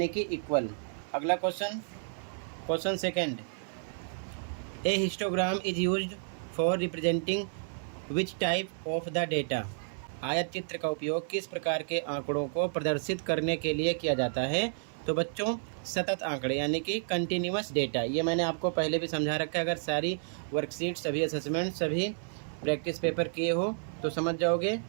कि इक्वल। अगला question, question second, A histogram is used for representing which type of the data. आयत चित्र का उपयोग किस प्रकार के आंकड़ों को प्रदर्शित करने के लिए किया जाता है। तो बच्चों सतत आंकड़े यानी कि कंटिन्यूअस डेटा। ये मैंने आपको पहले भी समझा रखा है। अगर सारी वर्कशीट, सभी असेसमेंट, सभी प्रैक्टिस पेपर किए हो तो समझ जाओगे,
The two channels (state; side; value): silent; left; 57 dB below the other